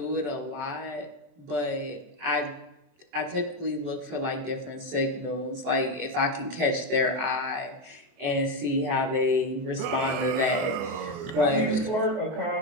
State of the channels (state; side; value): late; left; 24 ms